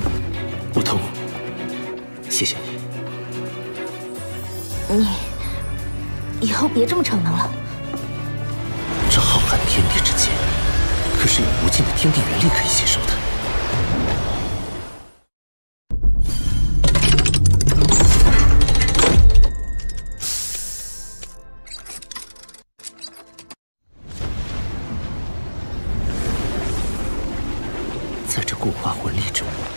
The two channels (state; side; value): inverted; both; correlation -1.00